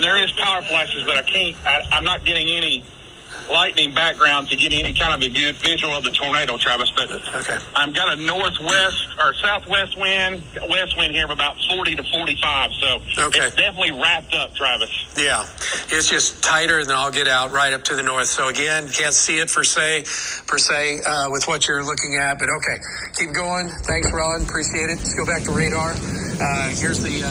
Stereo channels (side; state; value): both; identical; correlation 1.00